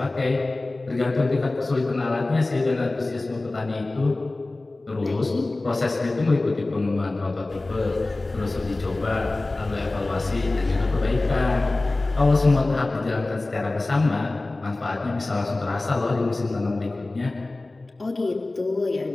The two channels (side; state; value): right; quieter; 3.0 dB